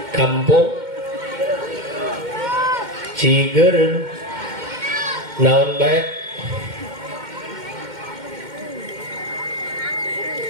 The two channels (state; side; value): late; left; 2.1 ms